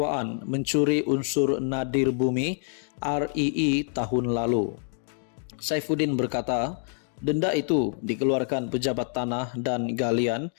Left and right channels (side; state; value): right; silent; digital silence